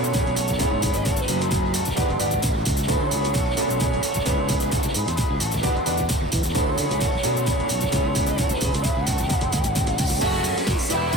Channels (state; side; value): normal; both; correlation 0.46